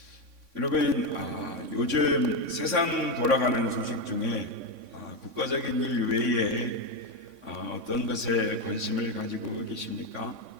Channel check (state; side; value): late; left; 3.6 ms